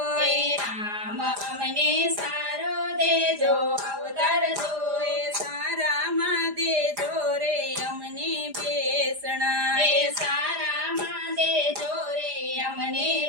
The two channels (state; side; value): late; left; 4.9 ms